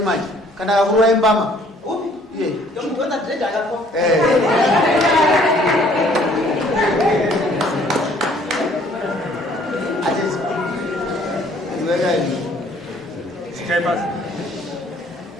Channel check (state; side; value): normal; both; correlation 0.59